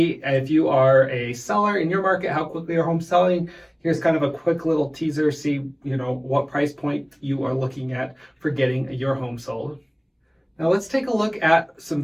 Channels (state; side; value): identical; both; correlation 1.00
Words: if you are a seller in your market, how quickly are homes selling? Here's kind of a quick little teaser, see what price point you are looking at for getting your home sold. Now let's take a look at some